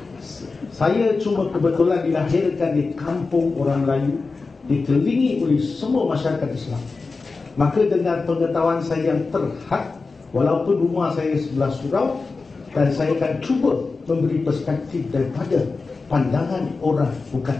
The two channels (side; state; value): right; quieter; 4.1 dB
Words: Saya cuma kebetulan dilahirkan di kampung orang Melayu, dikelilingi oleh semua masyarakat Islam. Maka dengan pengetahuan saya yang terhad, walaupun rumah saya sebelah surau, dan saya akan cuba memberi perspektif daripada pandangan orang bukan